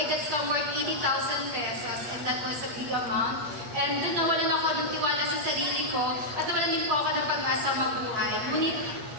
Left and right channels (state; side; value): late; left; 8.8 ms